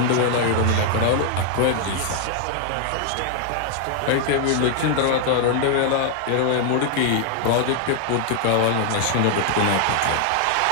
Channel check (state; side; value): different; both; correlation 0.00